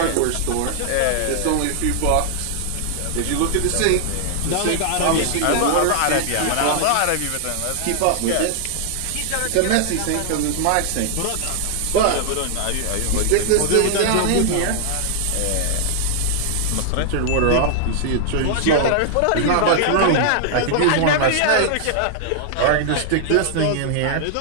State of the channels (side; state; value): both; different; correlation -0.01